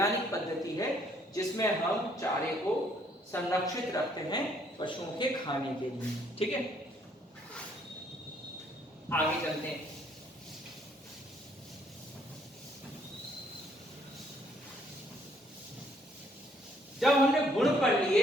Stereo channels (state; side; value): normal; both; correlation 0.66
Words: पद्धति है जिसमें हम चारे को संरक्षित रखते हैं पशुओं के खाने के लिए। ठीक है। आगे चलते हैं। जब हमने गुण पढ़